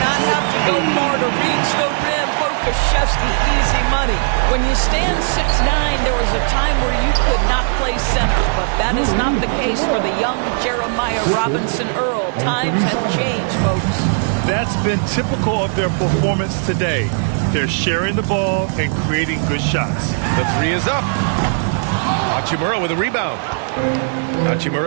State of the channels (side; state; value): left; silent; digital silence